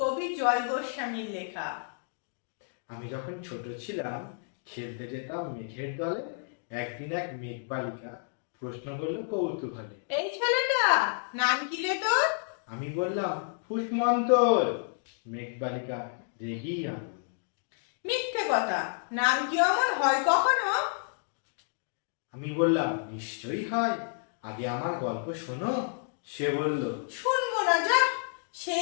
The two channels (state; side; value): silent; right; digital silence